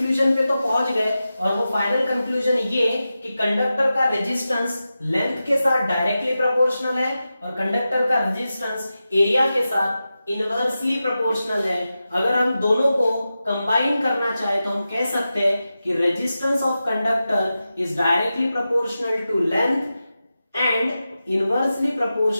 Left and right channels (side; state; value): both; inverted; correlation -0.92